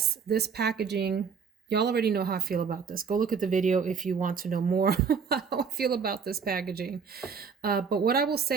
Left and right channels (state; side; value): quieter; left; 6.1 dB